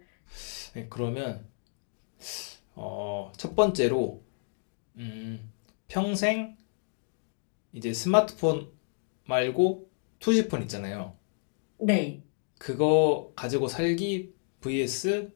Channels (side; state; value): right; silent; 58 dB below the other